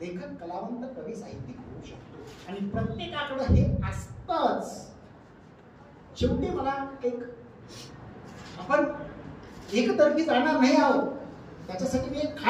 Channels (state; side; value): identical; both; correlation 1.00